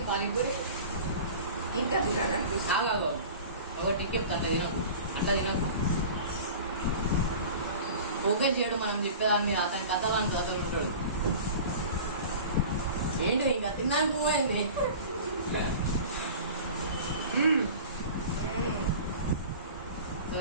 పానీపూరి? ఇంకా తినాలనిపిస్తుంది. ఆగాగో, ఒక టిక్ చెప్తా. అట్లా తినకు. ఫోకస్ చేయడు మనం చెప్పేదాన్ని. అతని కథలు అతను ఉంటాడు. ఏంటి ఇంకా తిన్నాను పోయింది.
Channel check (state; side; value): inverted; both; correlation -0.38